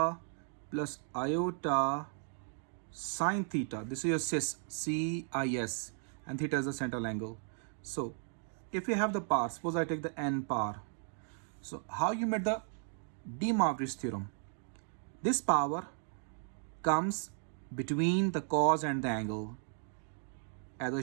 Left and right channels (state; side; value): silent; left; 54 dB below the other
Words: plus iota sine theta. This is your cis, C-I-S, and theta is the central angle. So if you have the power, suppose I take the n power. So how you made the De Moivre's theorem? This power comes between the cos and the angle. As I